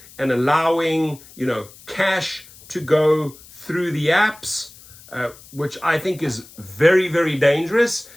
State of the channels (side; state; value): left; noise; hiss, 22 dB below the sound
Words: and allowing, cash to go through the apps, which I think is very, very dangerous